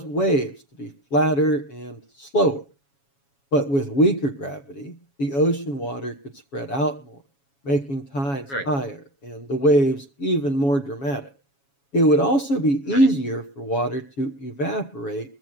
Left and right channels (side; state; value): right; late; 7.2 ms